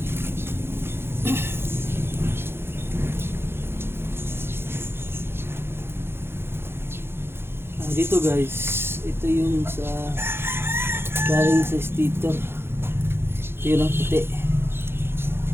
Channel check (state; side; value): late; left; 0.11 ms